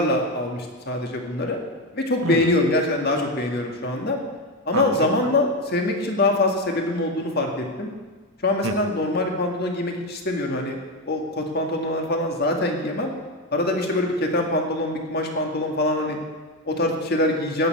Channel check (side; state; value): both; normal; correlation 0.12